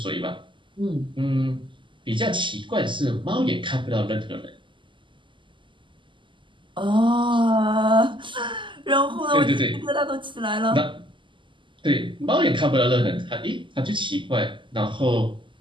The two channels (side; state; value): left; late; 0.24 ms